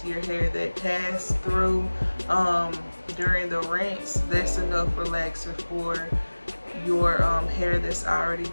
of your hair that passed through during the rinse. That's enough relaxer for your hair that's already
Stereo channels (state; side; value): inverted; both; correlation -1.00